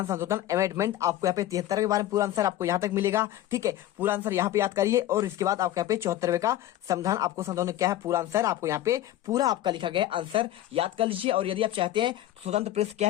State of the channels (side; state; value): right; quieter; 13.3 dB